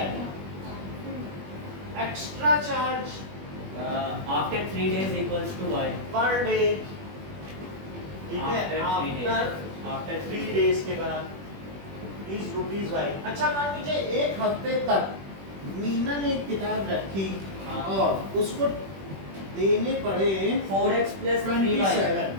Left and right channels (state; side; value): late; left; 21 ms